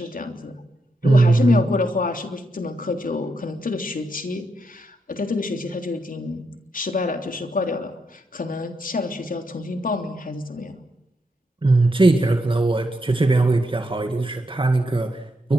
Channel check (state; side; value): normal; both; correlation 0.82